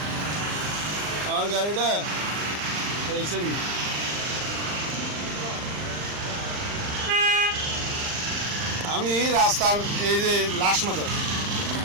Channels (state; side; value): late; left; 39 ms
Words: আমার গাড়িটা দেখছেন আমি রাস্তার এই যে লাশ মাথার